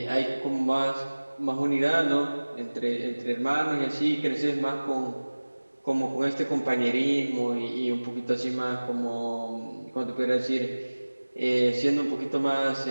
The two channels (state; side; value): inverted; both; correlation -1.00